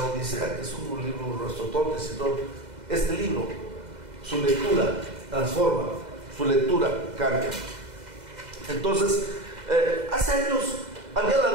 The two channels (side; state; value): left; late; 2.0 ms